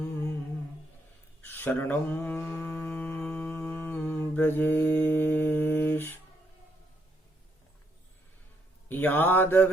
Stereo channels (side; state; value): both; normal; correlation 0.74